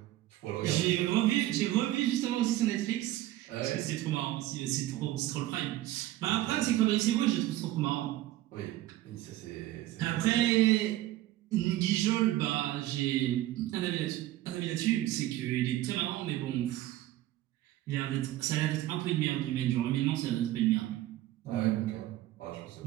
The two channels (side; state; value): left; quieter; 14.9 dB